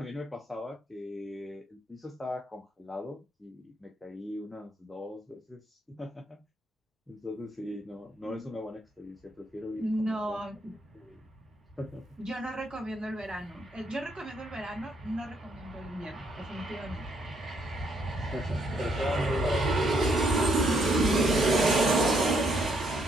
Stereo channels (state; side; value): normal; both; correlation 0.72